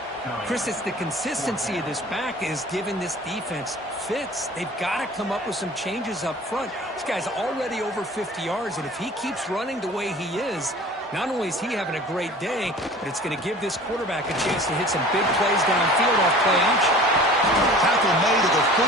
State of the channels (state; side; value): normal; both; correlation 0.44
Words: Chris, it's the consistency of this back is giving this defense fits. They've got to come up with some changes up front. This guy's already over 50 yards, and if he keeps running the way he is, not only is he having a great day, but it's going to give this quarterback a chance to hit some big plays downfield off play action. Tackle made at the